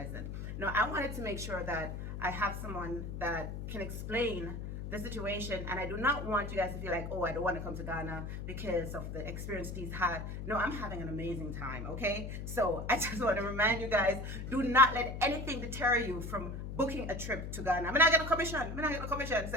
Now I wanted to make sure that I have someone that can explain the situation, and I do not want you guys to feel like, oh, I don't want to come to Ghana because of the experience he's had. No, I'm having an amazing time, okay? So I just want to remind you guys, do not let anything deter you from booking a trip to Ghana. I'm not getting a commission. So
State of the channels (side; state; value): left; noise; hum, 6 dB below the sound